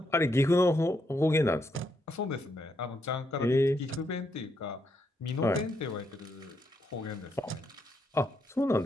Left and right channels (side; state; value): both; normal; correlation 0.78